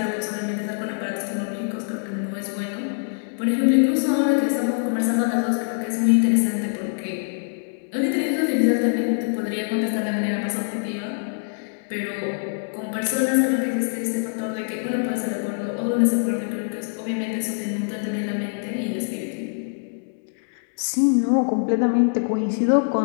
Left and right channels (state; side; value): silent; right; digital silence